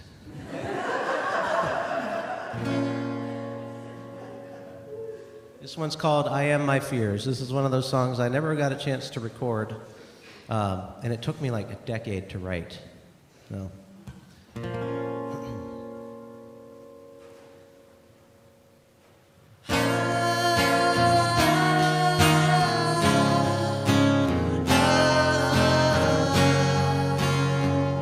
This one's called I Am My Fears. This is one of those songs I never got a chance to record, and it took me like a decade to write. So.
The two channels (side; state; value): both; identical; correlation 1.00